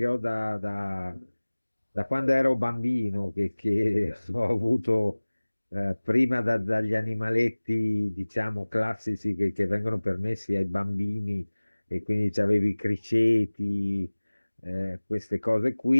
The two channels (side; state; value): both; inverted; correlation -1.00